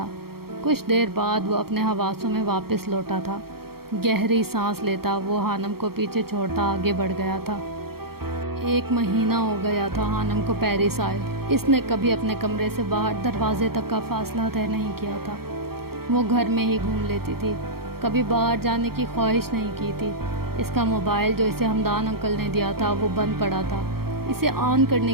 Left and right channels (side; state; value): left; late; 0.94 ms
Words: کچھ دیر بعد وہ اپنے حواسوں میں واپس لوٹا تھا۔ گہری سانس لیتا وہ خانم کو پیچھے چھوڑتا آگے بڑھ گیا تھا۔ 1 مہینہ ہو گیا تھا خانم کو پیرس آئے۔ اس نے کبھی اپنے کمرے سے باہر دروازے تک کا فاصلہ طے نہیں کیا تھا۔ وہ گھر میں ہی گھوم لیتی تھی، کبھی باہر جانے کی خواہش نہیں کی تھی۔ اس کا موبائل جو اسے ہمدان انکل نے دیا تھا وہ بند پڑا تھا، اسے آن